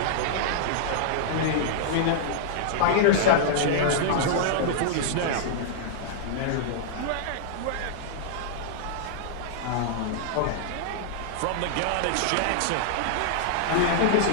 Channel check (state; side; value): different; both; correlation -0.01